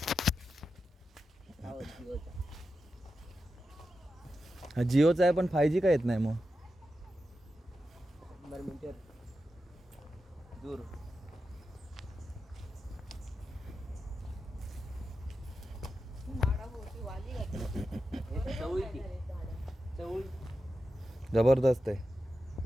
हा जिओचा आहे पण 5G का येत नाही मग. दूर जबरदस्त आहे.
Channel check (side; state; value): both; normal; correlation 0.90